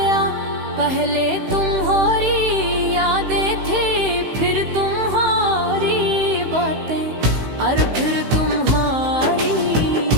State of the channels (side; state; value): left; late; 16 ms